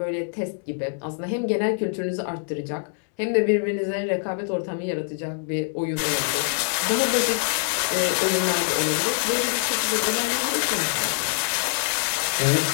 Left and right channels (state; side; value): silent; right; digital silence